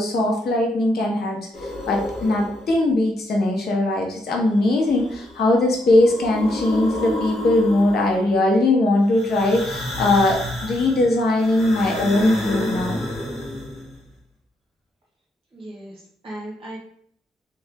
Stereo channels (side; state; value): both; normal; correlation 0.77